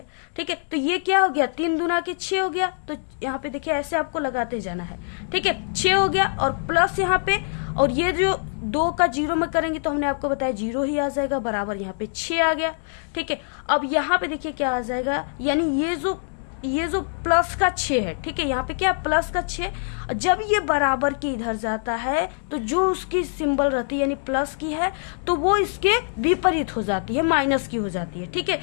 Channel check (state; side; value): silent; right; digital silence